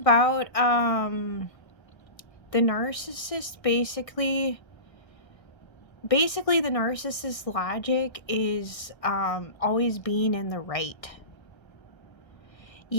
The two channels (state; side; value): late; right; 1.6 ms